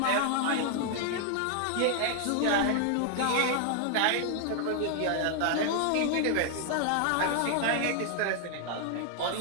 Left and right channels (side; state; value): both; different; correlation 0.00